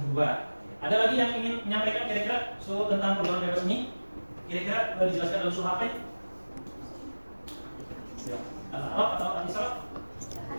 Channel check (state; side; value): inverted; both; correlation -1.00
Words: Ada lagi yang ingin menyampaikan kira-kira tentang pergaulan bebas ini? Kira-kira dijelaskan dalam surah apa ya? Al-A'raf atau Al-Isra?